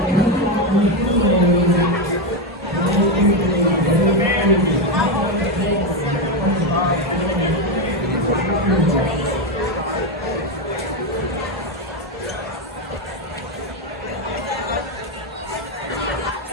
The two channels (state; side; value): normal; both; correlation 0.09